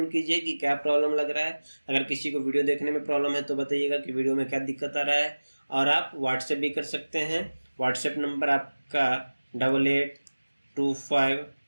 कीजिए कि क्या प्रॉब्लम लग रहा है। अगर किसी को वीडियो देखने में प्रॉब्लम है तो बताइएगा कि वीडियो में क्या दिक्कत आ रहा है। और आप व्हाट्सएप भी कर सकते हैं। व्हाट्सएप नंबर आपका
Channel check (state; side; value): inverted; both; correlation -1.00